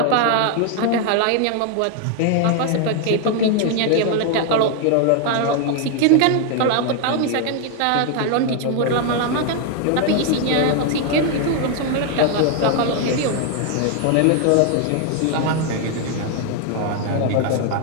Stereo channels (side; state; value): both; different; correlation 0.00